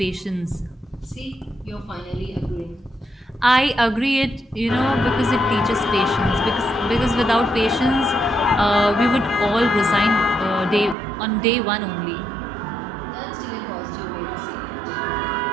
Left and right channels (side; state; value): left; drops out; at 11.0 s